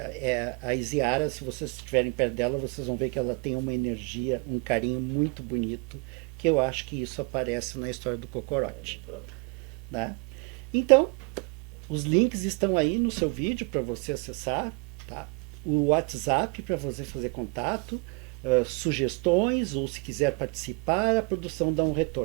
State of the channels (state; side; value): quieter; left; 32.4 dB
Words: a Isiara, se vocês estiverem perto dela, vocês vão ver que ela tem uma energia, um carinho muito bonito, que eu acho que isso aparece na história do Cocorote. Né? Então, os links estão aí no seu vídeo para você acessar, tá? O WhatsApp para você fazer contato, sugestões, ou se quiser participar, a produção dá um